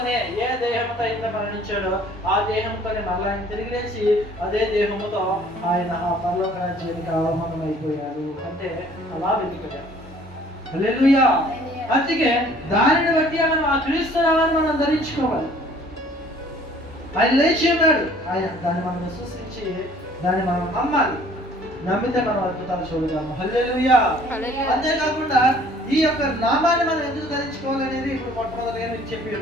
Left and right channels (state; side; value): normal; both; correlation 0.55